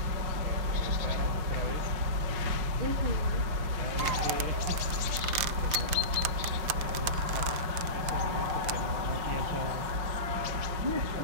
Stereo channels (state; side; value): late; left; 6.6 ms